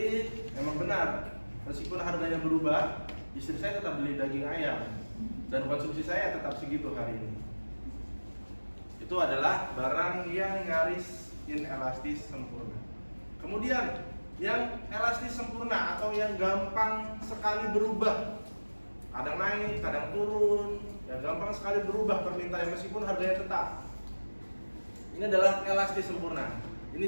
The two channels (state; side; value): inverted; both; correlation -1.00